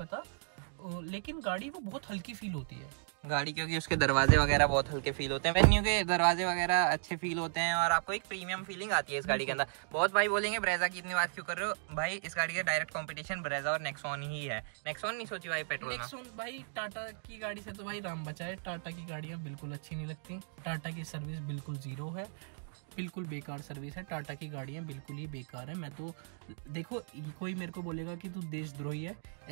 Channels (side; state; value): left; silent; digital silence